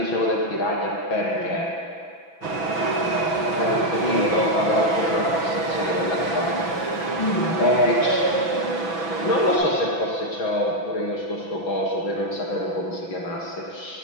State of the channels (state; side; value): late; right; 6.0 ms